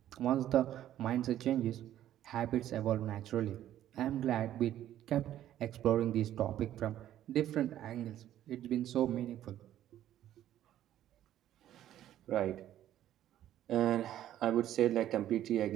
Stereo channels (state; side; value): quieter; left; 12.1 dB